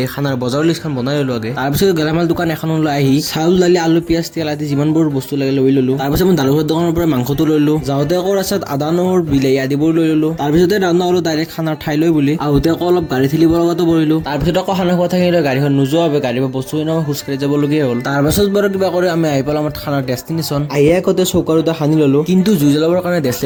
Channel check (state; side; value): identical; both; correlation 1.00